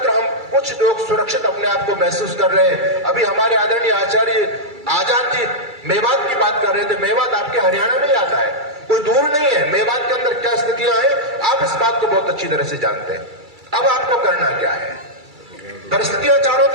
हम कुछ लोग सुरक्षित अपने आप को महसूस कर रहे हैं। अभी हमारे आदरणीय आचार्य आजाद जी मेवात की बात कर रहे थे। मेवात आपके हरियाणा में ही आता है, कोई दूर नहीं है। मेवात के अंदर क्या स्थितियां हैं आप इस बात को बहुत अच्छी तरह से जानते हैं। अब आपको करना क्या है? परिस्थितियां चारों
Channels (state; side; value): late; left; 2.3 ms